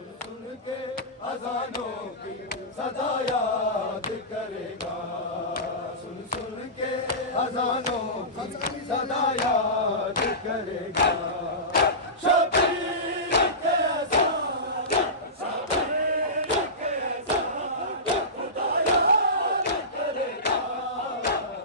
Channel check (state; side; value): normal; both; correlation -0.20